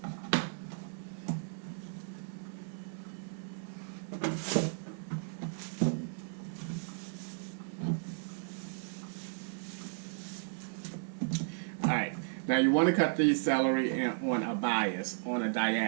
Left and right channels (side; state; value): left; silent; 55 dB below the other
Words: Alright. Now you want to cut these celery on a bias, on a